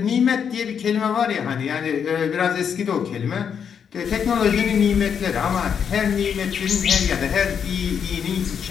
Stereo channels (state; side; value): quieter; right; 7.4 dB